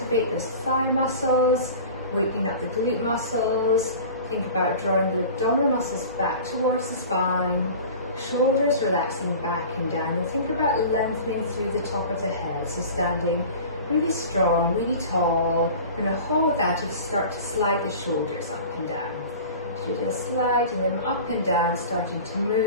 those thigh muscles, waking up the glute muscles. Think about drawing the abdominal muscles back towards the spine, shoulders relaxing back and down, and think about lengthening through the top of the head. So standing really strong, really tall. We're going to hold that and start to slide the shoulders up and down. So just sliding them up and down, starting to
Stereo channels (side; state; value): both; inverted; correlation -0.38